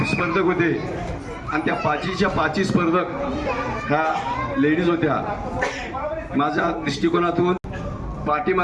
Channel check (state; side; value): identical; both; correlation 1.00